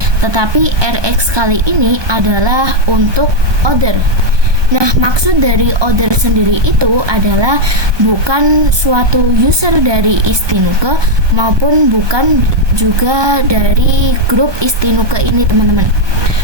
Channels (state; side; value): late; left; 1.2 ms